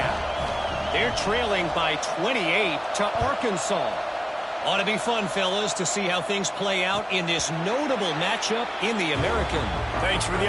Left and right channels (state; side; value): identical; both; correlation 1.00